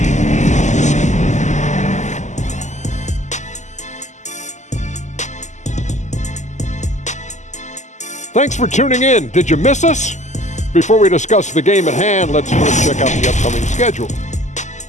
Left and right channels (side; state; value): right; late; 0.34 ms